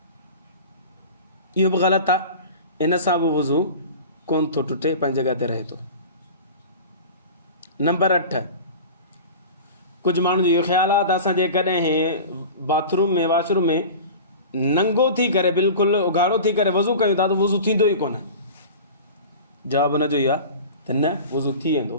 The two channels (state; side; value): inverted; both; correlation -0.35